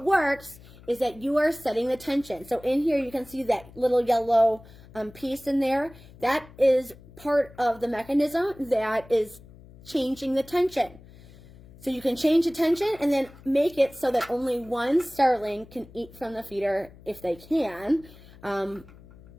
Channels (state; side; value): noise; left; hum, 22 dB below the sound